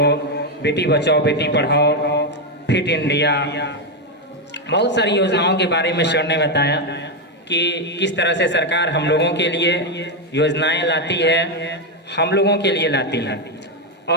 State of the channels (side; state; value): both; normal; correlation 0.06